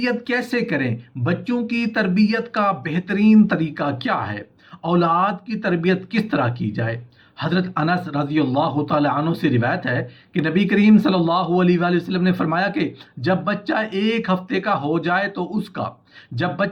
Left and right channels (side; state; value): both; identical; correlation 1.00